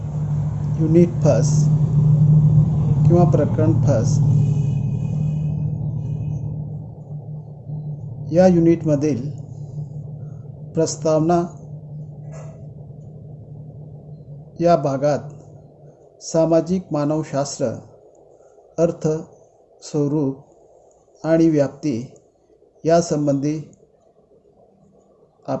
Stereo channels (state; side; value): identical; both; correlation 1.00